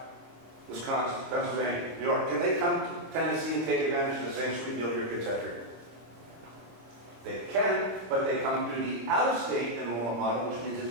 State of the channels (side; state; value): left; late; 26 ms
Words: Wisconsin, Pennsylvania, New York. Can they come to Tennessee and take advantage of the same sweet deal your kids have here? They can, but they come through the out-of-state enrollment model, which means